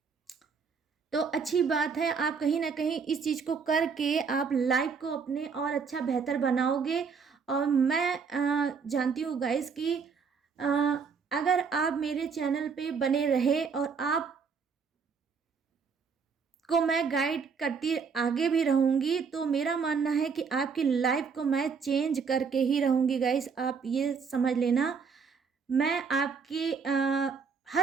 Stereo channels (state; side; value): quieter; left; 5.7 dB